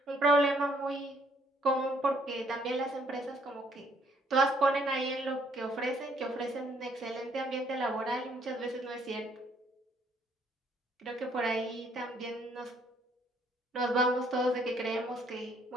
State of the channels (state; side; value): normal; both; correlation 0.66